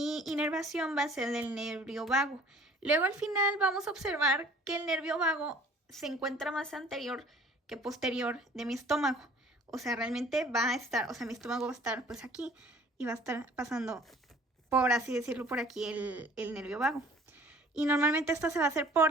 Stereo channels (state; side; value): normal; both; correlation 0.52